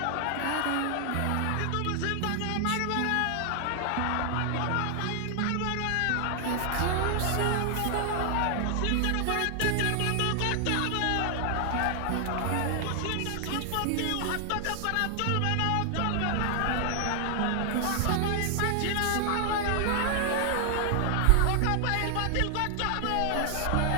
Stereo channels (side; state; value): both; different; correlation 0.00